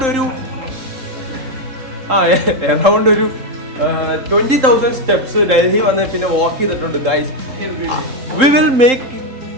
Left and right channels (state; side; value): late; left; 3.8 ms